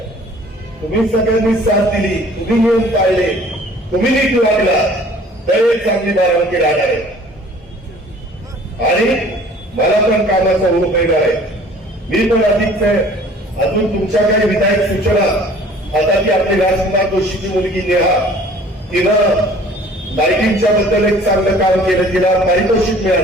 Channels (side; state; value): both; normal; correlation 0.51